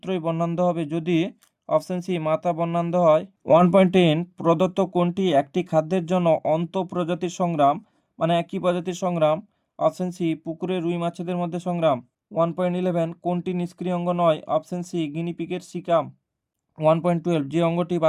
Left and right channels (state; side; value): identical; both; correlation 1.00